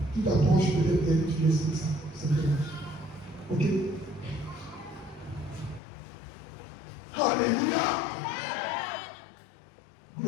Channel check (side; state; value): right; drops out; at 5.8 s